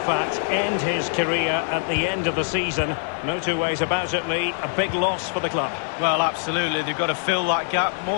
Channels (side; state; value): right; silent; 63 dB below the other